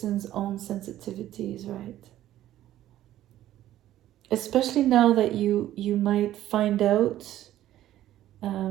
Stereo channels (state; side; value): quieter; left; 13.2 dB